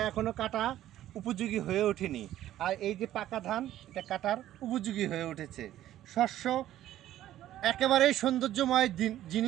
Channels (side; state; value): left; quieter; 13.0 dB